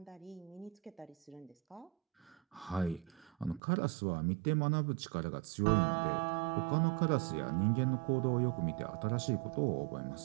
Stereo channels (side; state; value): left; drops out; at 3.6 s